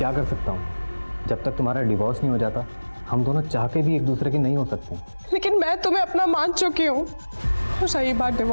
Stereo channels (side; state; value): both; inverted; correlation -1.00